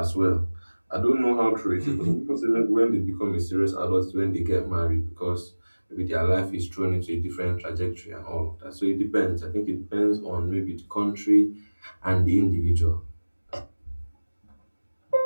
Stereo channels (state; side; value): inverted; both; correlation -1.00